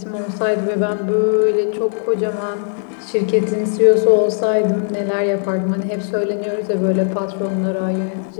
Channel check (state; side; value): silent; right; 67 dB below the other